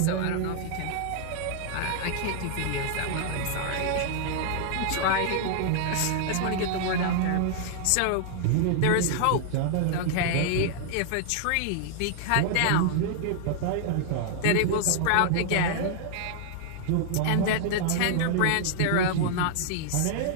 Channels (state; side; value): different; both; correlation -0.01